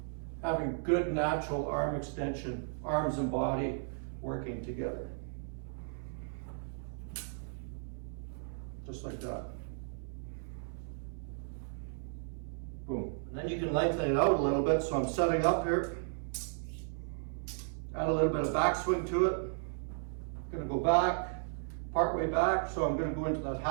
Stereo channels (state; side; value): silent; left; 55 dB below the other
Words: having good natural arm extension, arms and body working together. Just like that. Boom. And then you can lengthen it out a little bit. So I'm setting up here. Add a little bit of backswing to it. I'm going to go back, part way back. So I'm going to go into that